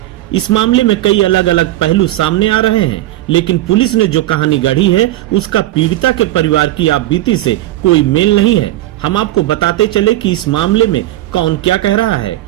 इस मामले में कई अलग अलग पहलू सामने आ रहे हैं, लेकिन पुलिस ने जो कहानी गढ़ी है उसका पीड़िता के परिवार की आपबीती से कोई मेल नहीं है। हम आपको बताते चले कि इस मामले में कौन क्या कह रहा है।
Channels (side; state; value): left; quieter; 15.7 dB